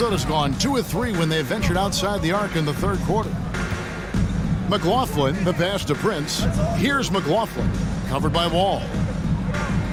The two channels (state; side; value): identical; both; correlation 1.00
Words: gone 2 of 3 when they ventured outside the arc in the third quarter. McLaughlin, the pass to Prince. Here's McLaughlin, covered by Wall.